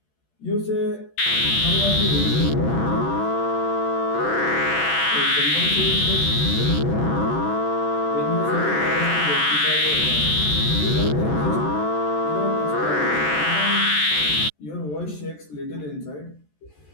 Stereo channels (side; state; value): right; late; 14 ms